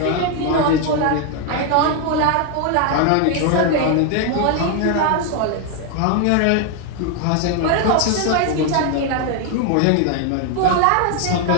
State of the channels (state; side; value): different; both; correlation 0.01